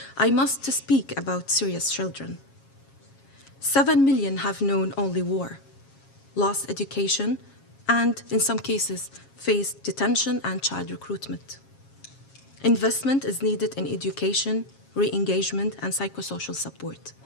I must speak about Syria's children. 7 million have known only war, lost education, and in some cases faced detention and child recruitment. Investment is needed in education, re-engagement, and psychosocial support.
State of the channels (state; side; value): late; right; 7.4 ms